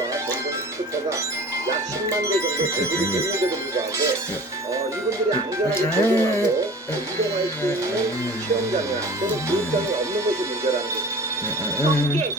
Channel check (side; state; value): both; normal; correlation 0.41